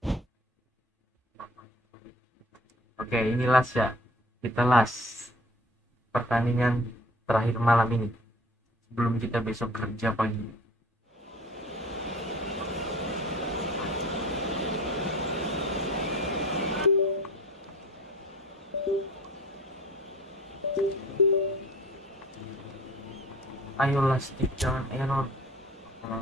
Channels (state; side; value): normal; both; correlation 0.47